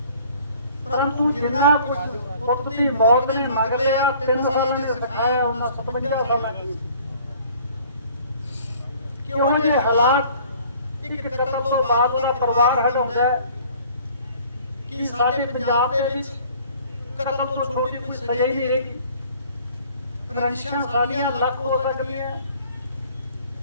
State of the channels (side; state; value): both; inverted; correlation -0.53